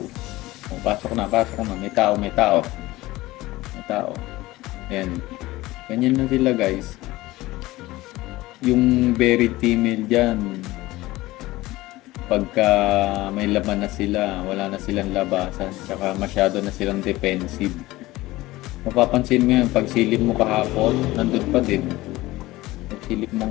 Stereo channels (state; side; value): quieter; right; 18.6 dB